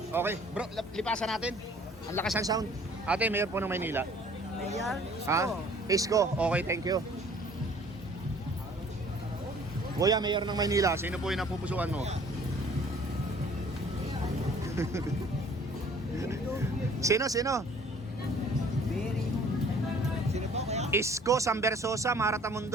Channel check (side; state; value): both; normal; correlation 0.54